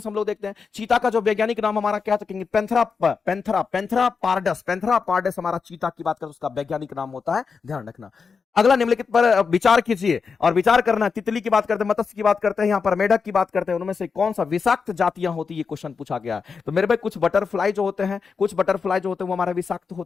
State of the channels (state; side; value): quieter; right; 5.4 dB